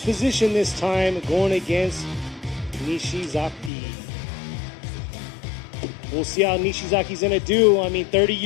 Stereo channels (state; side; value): drops out; right; at 3.7 s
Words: this time, going against Nishizaki. We'll see how Nishizaki's going to do. I mean, 30